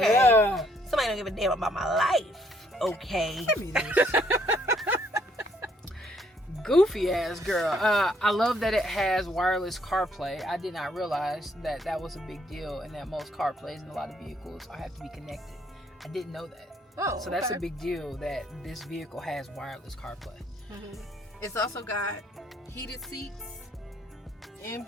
Somebody don't give a damn about my life. Okay. Goofy ass girl. I love that it has wireless CarPlay. I did not realize that was a big deal, and that most CarPlays in a lot of vehicles have to be connected. I didn't know that. So that's a big deal that this vehicle has wireless CarPlay. It's also got heated seats and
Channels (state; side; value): normal; both; correlation 0.68